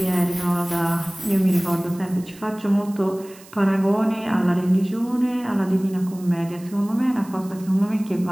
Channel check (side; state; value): right; noise; hiss, 22 dB below the sound